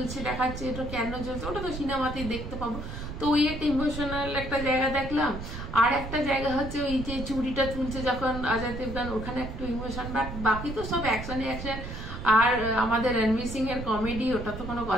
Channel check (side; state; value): right; noise; rumble, 8 dB below the sound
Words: দেখাচ্ছে, এটা কেন জ্বলছে ওটা তো সিনেমাতেই দেখতে পাবো। তো ওই একটা ইমোশনাল একটা জায়গা দেখলাম। আর একটা জায়গা হচ্ছে ওই যে চুড়িটা তুলছে যখন অজয় দেবগন, ওখানে একটু ইমোশন, বাট বাকি তো সব অ্যাকশন। আর আমাদের রণবীর সিং এর কমেডি, ওটা তো কোনো